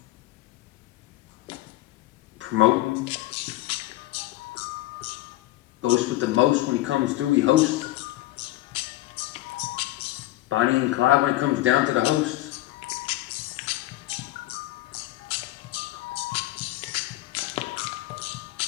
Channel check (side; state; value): right; quieter; 16.7 dB